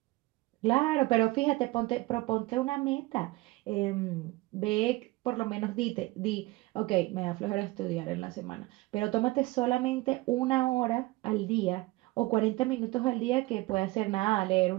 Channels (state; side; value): quieter; left; 20.8 dB